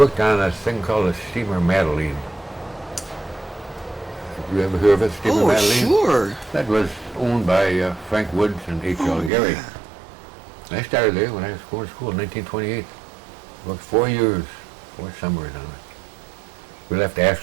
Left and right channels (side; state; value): left; drops out; at 9.3 s